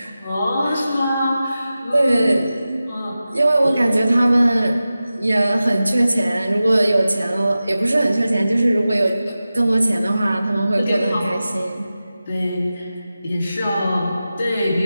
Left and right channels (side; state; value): both; inverted; correlation -0.94